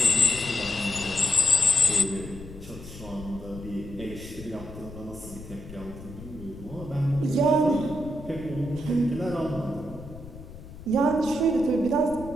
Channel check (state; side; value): noise; left; rumble, 15 dB below the sound